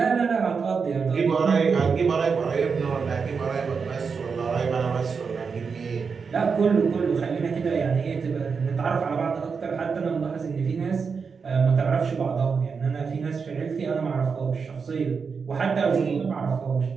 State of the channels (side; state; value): left; quieter; 5.5 dB